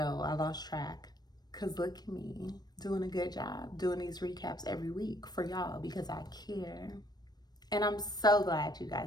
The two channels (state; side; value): late; right; 0.19 ms